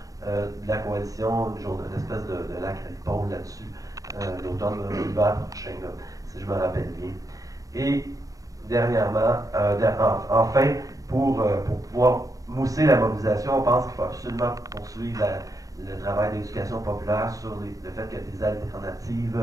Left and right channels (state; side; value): late; left; 0.17 ms